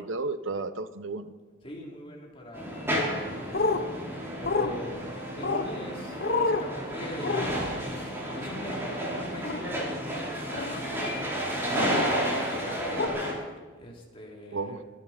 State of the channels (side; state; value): both; normal; correlation 0.05